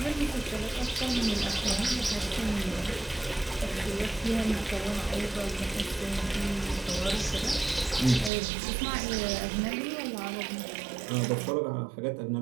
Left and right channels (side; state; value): left; drops out; at 8.3 s